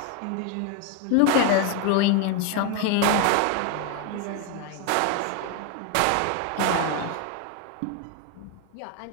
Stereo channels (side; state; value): both; different; correlation 0.01